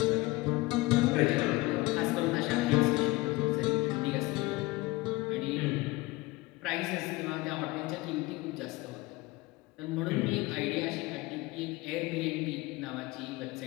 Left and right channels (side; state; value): right; quieter; 21.3 dB